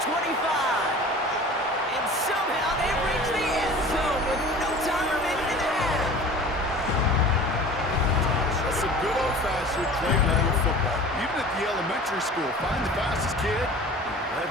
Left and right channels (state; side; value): normal; both; correlation 0.41